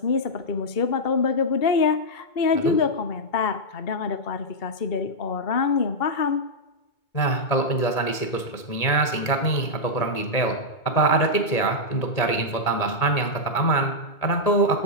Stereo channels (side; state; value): right; late; 2.2 ms